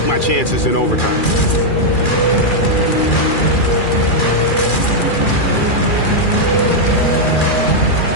my chances in overtime.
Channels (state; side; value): late; right; 2.4 ms